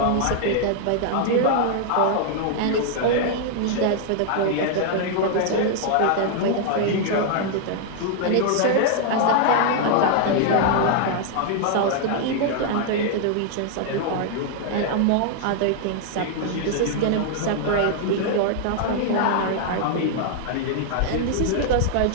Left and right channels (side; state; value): both; different; correlation 0.00